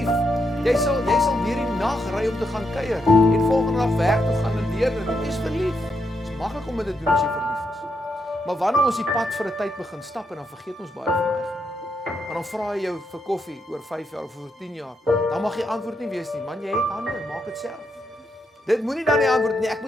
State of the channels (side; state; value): both; normal; correlation 0.81